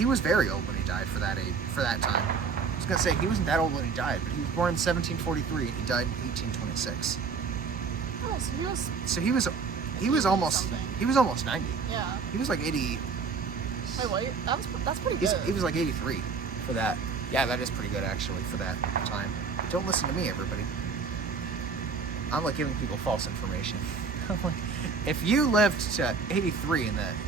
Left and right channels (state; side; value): quieter; left; 5.2 dB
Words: was very old when he died for that age, for that time. I was gonna say he wasn't that old when he died, but he was born in 1743 and he died in 1826. Oh, so he was almost 90. Yeah. He was like 80. Wait, that's pretty good. He was like 83 for that. Yeah, that is pretty good actually for that time. Don't listen to me, everybody. I'm like giving people false information. I'm like, if you lived to 83 in